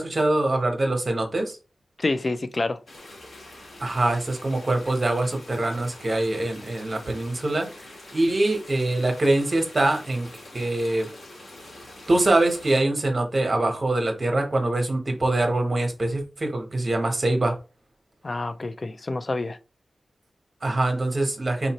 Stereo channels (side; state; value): both; normal; correlation 0.96